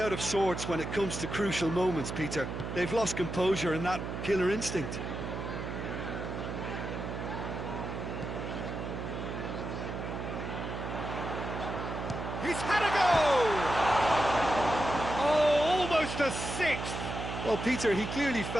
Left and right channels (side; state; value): right; noise; hum, 5 dB below the sound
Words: of sorts when it comes to crucial moments, Peter. They've lost composure and that killer instinct. He's had a go! Oh, almost a sixth! Well, Peter, he clearly